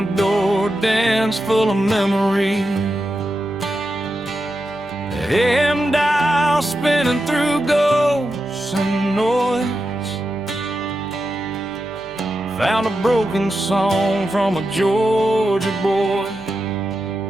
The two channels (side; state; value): right; noise; hum, 26 dB below the sound